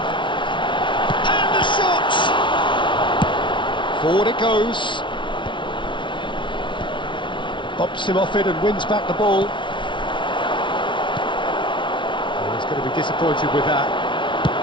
the shot! Forward it goes. Bops him off it and wins back the ball. Oh, he's going to be disappointed with that.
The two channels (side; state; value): right; late; 0.24 ms